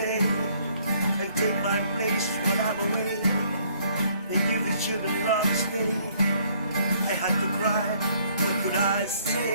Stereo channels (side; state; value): both; inverted; correlation -0.64